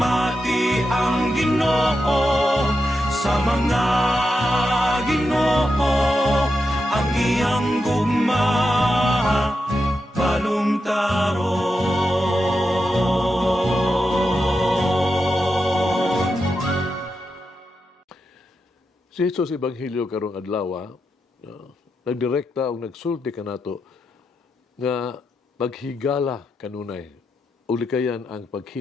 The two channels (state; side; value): normal; both; correlation 0.87